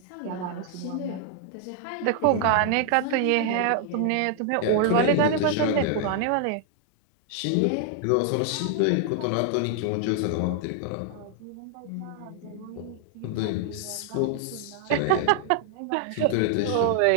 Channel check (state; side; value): different; both; correlation 0.00